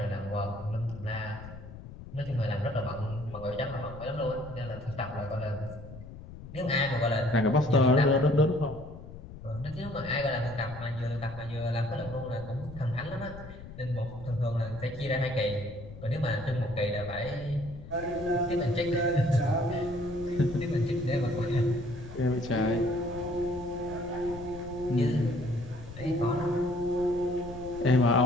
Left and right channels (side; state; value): left; noise; rumble, 14 dB below the sound